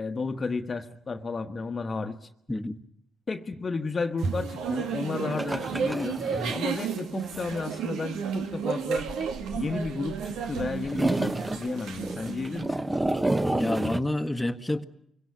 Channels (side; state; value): both; normal; correlation 0.84